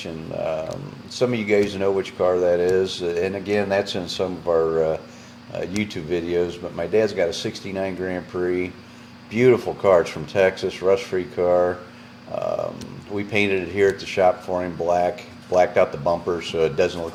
Some of you guys know which car that is, and again, that's in some of our YouTube videos. But my dad's got a '69 Grand Prix, beautiful car. It's from Texas, rust-free car. We painted it here at the shop for him black. blacked out the bumpers so it doesn't look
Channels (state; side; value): identical; both; correlation 1.00